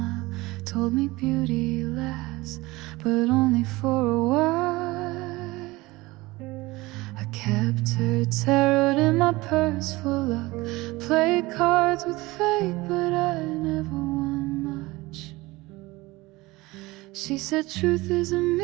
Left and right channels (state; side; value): quieter; left; 21.0 dB